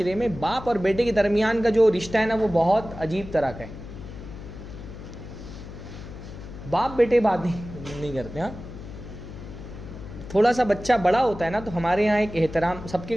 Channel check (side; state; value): left; noise; hum, 12 dB below the sound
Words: میں باپ اور بیٹے کے درمیان کا جو رشتہ ہے نا وہ بہت عجیب طرح کا ہے. باپ بیٹے بات نہیں کرتے. ہاں تھوڑا سا بچہ بڑا ہوتا ہے نا تو ہمارے یہاں ایک احترام, سب کے